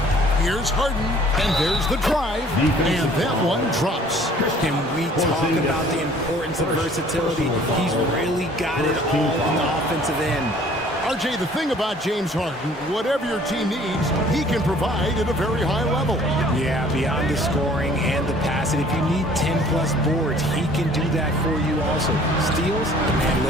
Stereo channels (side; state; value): both; normal; correlation 0.54